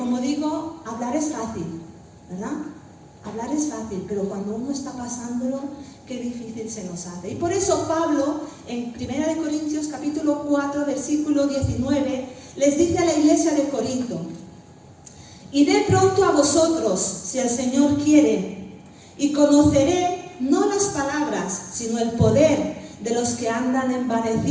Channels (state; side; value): identical; both; correlation 1.00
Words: digo, hablar es fácil, ¿verdad? Hablar es fácil, pero cuando uno está pasándolo, qué difícil se nos hace. Y por eso Pablo, en 1 Corintios capítulo 4, versículo 19, les dice a la iglesia de Corinto: iré pronto a vosotros, si el Señor quiere, y conoceré no las palabras, sino el poder de los que andan